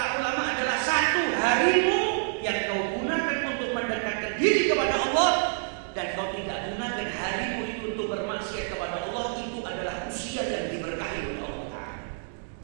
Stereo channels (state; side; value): silent; left; 59 dB below the other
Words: ulama adalah satu harimu yang kau gunakan untuk mendekatkan diri kepada Allah, dan kau tidak gunakan harimu itu untuk bermaksiat kepada Allah. Itu adalah usia yang diberkahi oleh Allah.